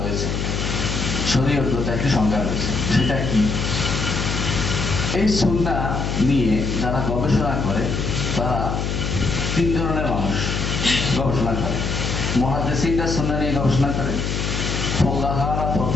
শরীয়তগত একটি সংজ্ঞা রয়েছে। সেটা কি? এই সুন্নাহ নিয়ে যারা গবেষণা করে তারা তিন ধরনের মানুষ গবেষণা করে। মুহাদ্দিসিনরা সুন্নাহ নিয়ে গবেষণা করে, ফুকাহারা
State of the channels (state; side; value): noise; left; hum, 1 dB below the sound